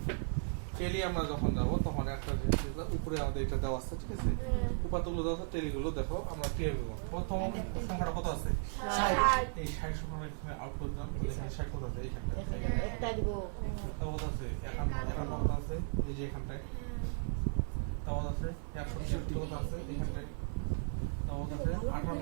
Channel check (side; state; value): left; silent; 54 dB below the other